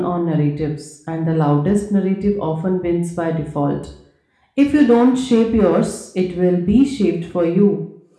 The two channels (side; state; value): both; identical; correlation 1.00